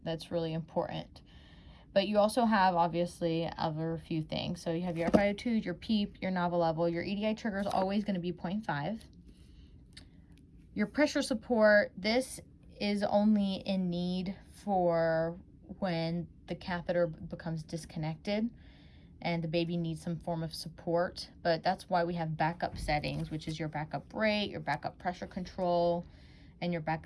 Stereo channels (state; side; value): identical; both; correlation 1.00